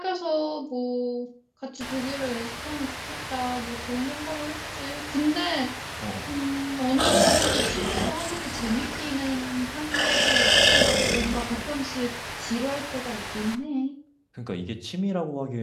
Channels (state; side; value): identical; both; correlation 1.00